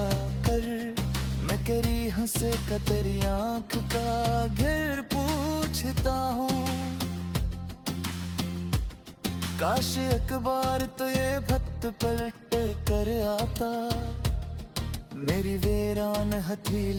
मैं तेरी हंसे का तेरी आँख का घेर पूछता हूँ। काश एक बार तो ये भक्त पलट कर आता, मेरी वीरान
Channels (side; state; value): both; identical; correlation 1.00